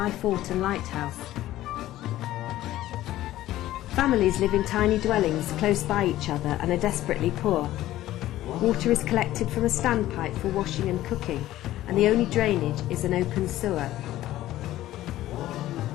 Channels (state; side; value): quieter; right; 14.7 dB